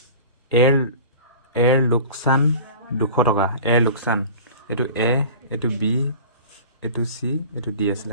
এৰ লোকসান 200 টকা এৰ লোকসান এটো এ এটো বি এটো সি এটো ডি আছিল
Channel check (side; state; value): both; inverted; correlation -0.39